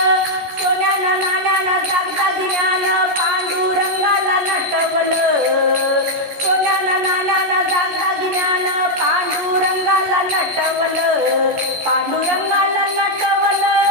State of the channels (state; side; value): late; left; 14 ms